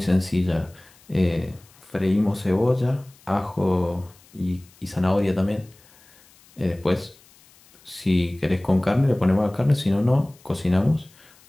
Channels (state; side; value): noise; left; hiss, 28 dB below the sound